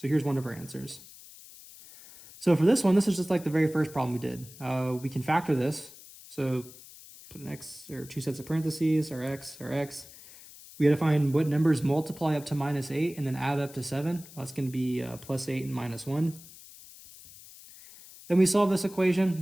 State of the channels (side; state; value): left; noise; hiss, 19 dB below the sound